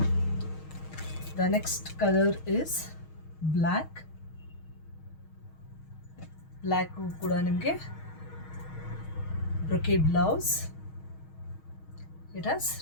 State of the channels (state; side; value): late; right; 6.4 ms